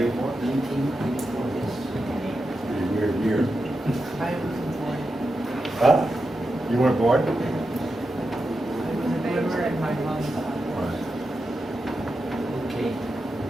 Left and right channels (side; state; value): both; normal; correlation 0.89